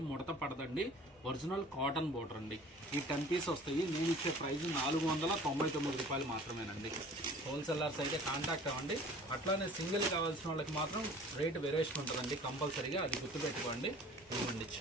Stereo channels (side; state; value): both; normal; correlation 0.47